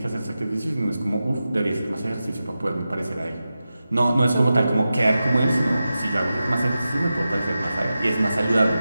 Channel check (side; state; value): both; inverted; correlation -0.93